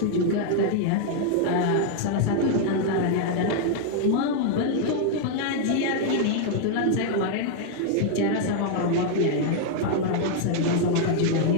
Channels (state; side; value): different; both; correlation 0.00